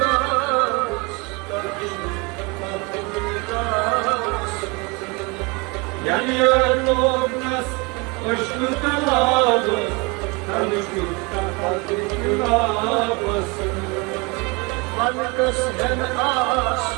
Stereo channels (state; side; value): quieter; left; 28.4 dB